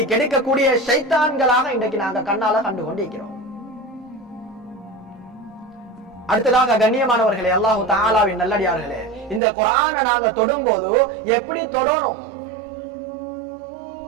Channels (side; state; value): left; drops out; at 9.4 s